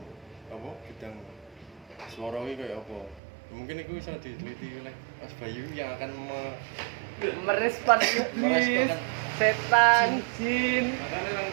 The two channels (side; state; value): left; drops out; at 3.2 s